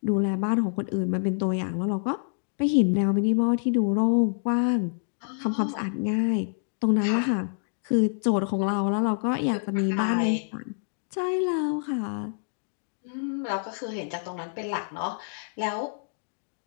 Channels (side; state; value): right; silent; digital silence